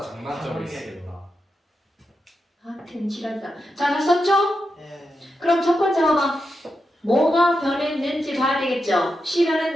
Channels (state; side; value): normal; both; correlation 0.87